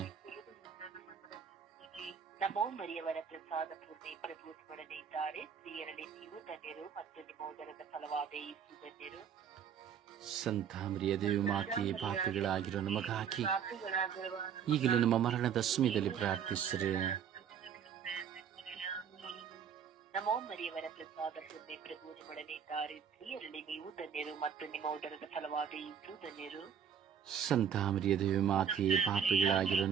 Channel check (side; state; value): left; quieter; 7.9 dB